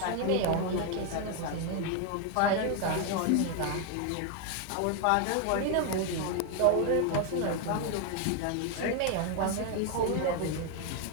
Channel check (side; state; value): both; different; correlation 0.01